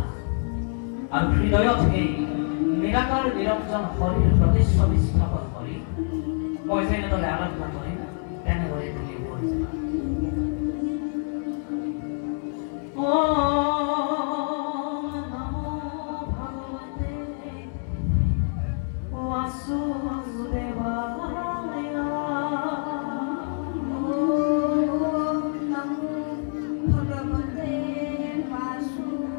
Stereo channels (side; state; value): right; silent; 61 dB below the other